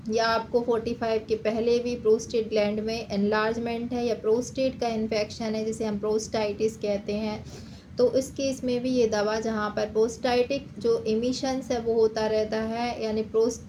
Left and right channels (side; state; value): both; identical; correlation 1.00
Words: या आपको 45 के पहले भी प्रोस्टेट ग्लैंड में एनलार्जमेंट है या प्रोस्टेट का इन्फेक्शन है जिसे हम प्रोस्टाइटिस कहते हैं, तो इस केस में भी ये दवा, जहाँ पर प्रोस्टाइटिक जो इमिशंस है वो होता रहता है, यानी